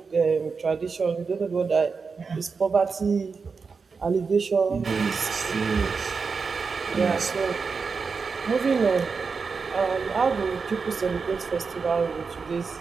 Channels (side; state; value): left; quieter; 5.0 dB